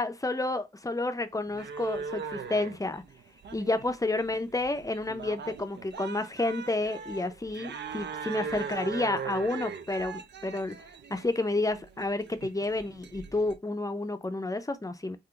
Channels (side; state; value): both; normal; correlation 0.69